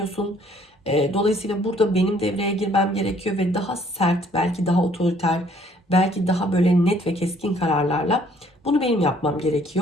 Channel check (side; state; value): both; normal; correlation 0.60